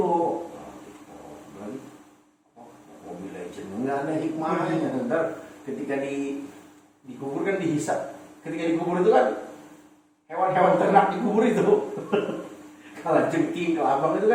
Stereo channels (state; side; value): identical; both; correlation 1.00